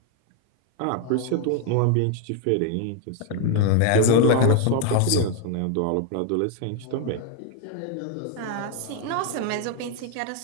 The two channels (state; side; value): different; both; correlation 0.01